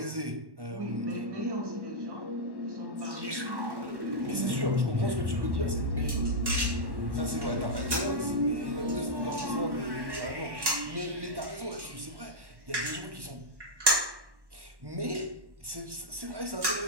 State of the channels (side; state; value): left; late; 1.1 ms